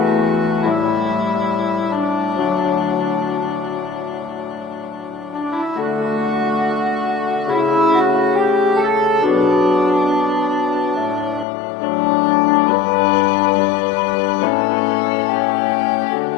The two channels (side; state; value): right; drops out; at 11.5 s